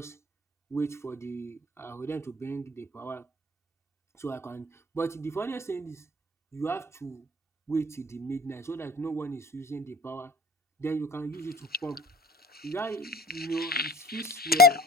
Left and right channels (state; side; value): normal; both; correlation 0.45